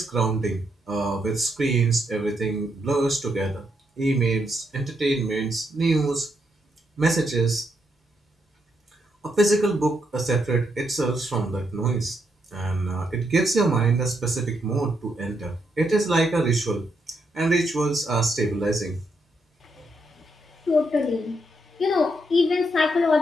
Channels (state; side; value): normal; both; correlation 0.79